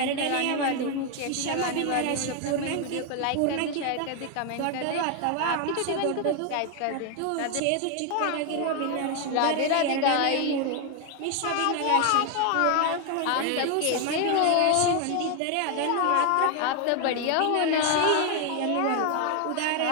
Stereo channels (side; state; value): both; different; correlation 0.01